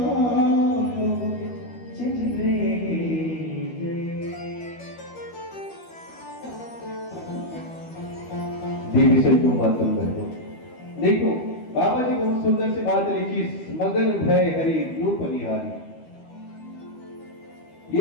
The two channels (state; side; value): late; right; 12 ms